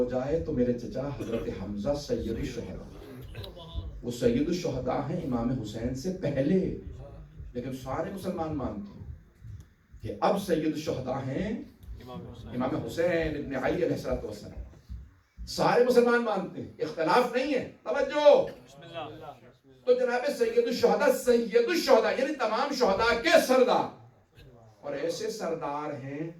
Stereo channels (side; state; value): both; identical; correlation 1.00